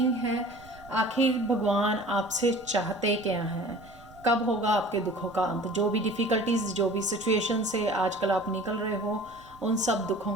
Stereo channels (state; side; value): noise; right; rumble, 22 dB below the sound